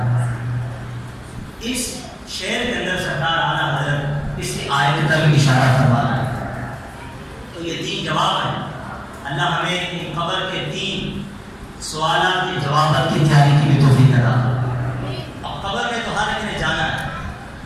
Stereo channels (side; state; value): both; identical; correlation 1.00